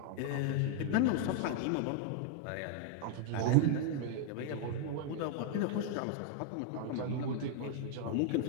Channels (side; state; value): both; different; correlation 0.00